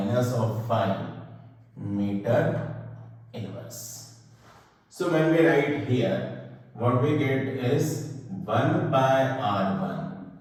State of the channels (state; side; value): identical; both; correlation 1.00